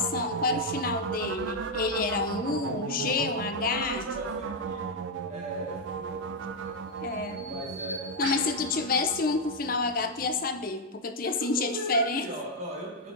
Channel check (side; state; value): both; normal; correlation 0.01